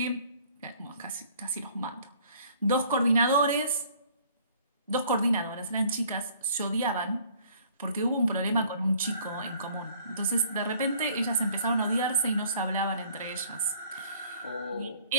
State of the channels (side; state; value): both; inverted; correlation -0.57